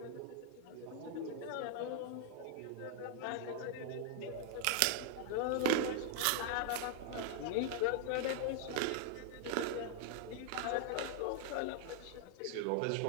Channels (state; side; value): different; both; correlation 0.00